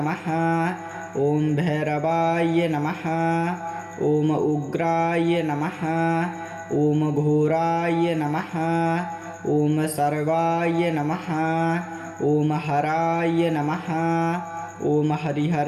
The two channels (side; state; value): both; identical; correlation 1.00